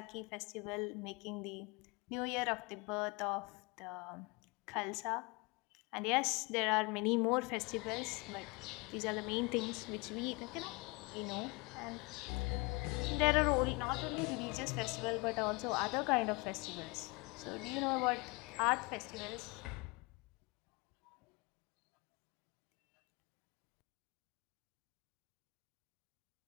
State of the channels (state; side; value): quieter; right; 27.4 dB